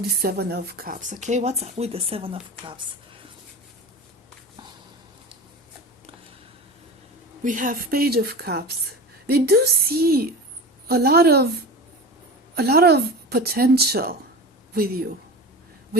the Seven of Cups, okay? What's up with the Seven of Cups? We have Page of Cups. They do see a lot of potential with you,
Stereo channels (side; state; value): both; normal; correlation 0.31